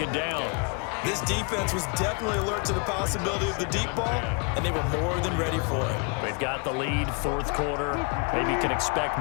down. This defense was definitely alert to the possibility of the deep ball, and they were more than ready for it. They've got the lead, fourth quarter. Maybe you can expect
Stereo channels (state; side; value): quieter; right; 34.9 dB